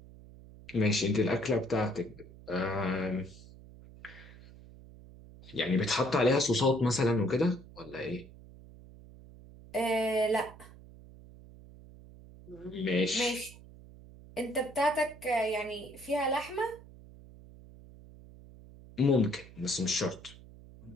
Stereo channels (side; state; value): right; noise; hum, 19 dB below the sound